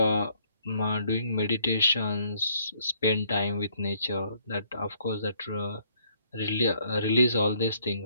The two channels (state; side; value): inverted; both; correlation -0.65